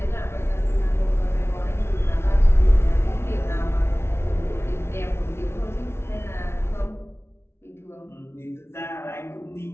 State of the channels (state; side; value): late; right; 0.12 ms